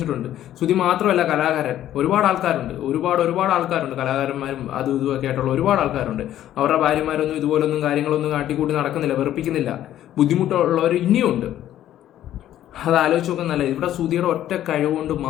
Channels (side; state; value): right; quieter; 12.2 dB